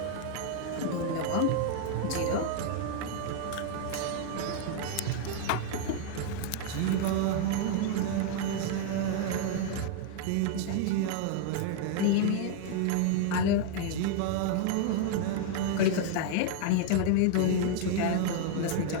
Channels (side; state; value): both; different; correlation 0.00